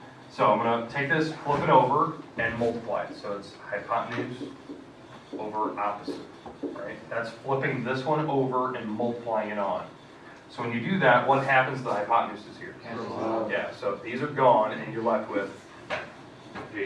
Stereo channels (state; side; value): identical; both; correlation 1.00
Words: So I'm going to take this, flip it over, and multiply it. So it's hypotenuse over opposite, right? That's flipping this one over and multiplying it on. So when you do that, what happens to the hypotenuse is here? Yeah, so these are gone, and you're left with